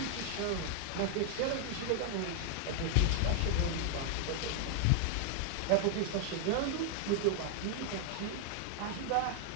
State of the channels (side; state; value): both; different; correlation 0.00